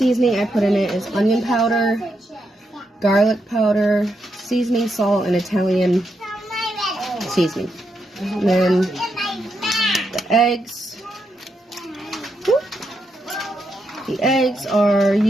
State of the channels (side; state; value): both; normal; correlation 0.82